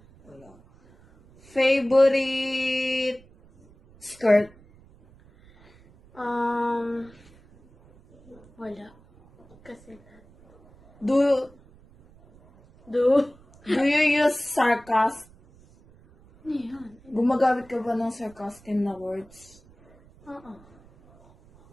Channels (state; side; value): noise; right; rumble, 27 dB below the sound